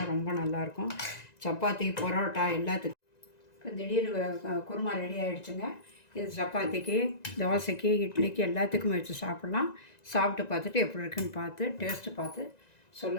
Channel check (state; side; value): late; right; 1.9 ms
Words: ரொம்ப நல்லாயிருக்கும், சப்பாத்தி பரோட்டா எல்லாத்துக்கும். இப்போ திடீர் குருமா ரெடி ஆகிடுச்சுங்க. இது சப்பாத்திக்கு தோசைக்கு இட்லிக்கு எல்லாத்துக்கும் வச்சு சாப்பிட்லாம். சாப்பிட்டு பார்த்துட்டு எப்படி இருக்குன்னு பார்த்து டேஸ்ட்டு பார்த்து